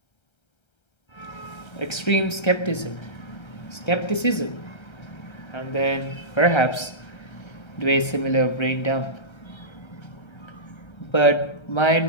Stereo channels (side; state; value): right; late; 1.3 ms